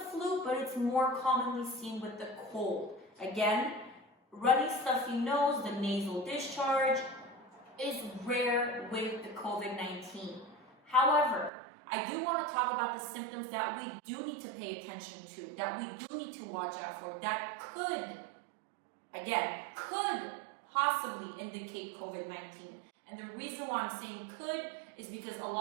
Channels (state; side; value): drops out; left; at 11.5 s